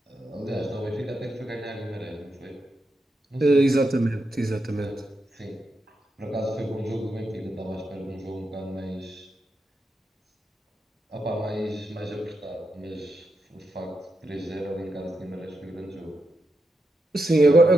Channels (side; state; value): both; normal; correlation 0.85